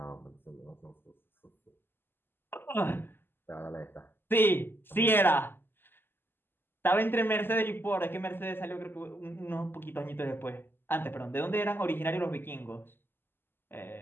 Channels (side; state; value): right; late; 0.10 ms